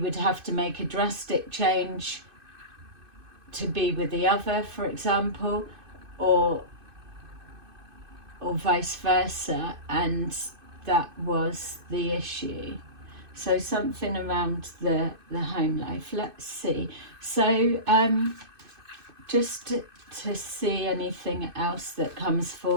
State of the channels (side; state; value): left; late; 2.5 ms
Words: have to make a drastic change to be with the other, for example, or vice versa, and that was the issue. So something around the home life. Let's see. So just to see anything else that comes